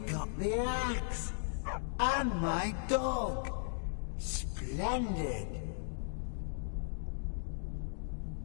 got the axe! And my dog! Splendid!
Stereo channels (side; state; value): right; silent; digital silence